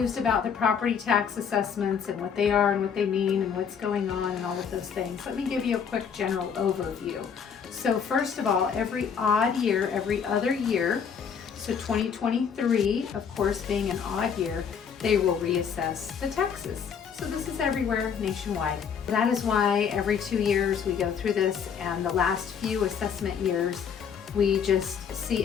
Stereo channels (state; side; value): quieter; right; 7.0 dB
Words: about the property tax assessments and what they are and what they mean and what's going on and all of those things, let me give you a quick general overview. So first of all, every odd year, every other year, so 2023, of course, being an odd year, they will reassess the taxes. So this is everywhere nationwide. That is why every 2 years we go through this, and the last few assessment years, we just see